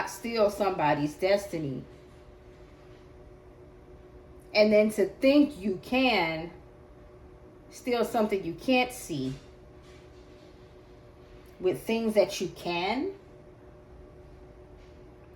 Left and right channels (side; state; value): both; identical; correlation 1.00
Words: steal somebody's destiny. And then to think you can steal something you can't see with things that you can.